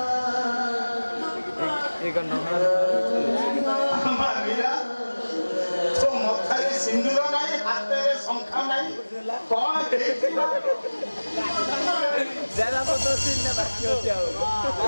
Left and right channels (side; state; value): both; inverted; correlation -1.00